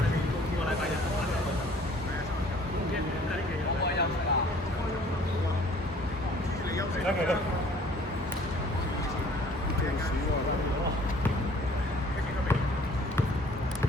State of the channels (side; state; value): both; normal; correlation 0.54